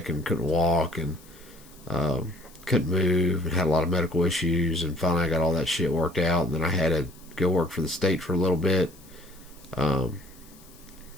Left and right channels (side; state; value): left; noise; hiss, 24 dB below the sound